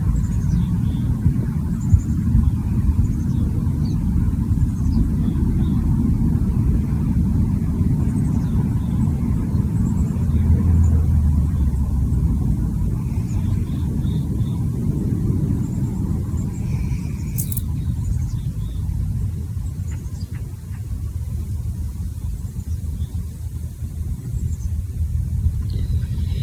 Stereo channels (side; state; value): both; identical; correlation 1.00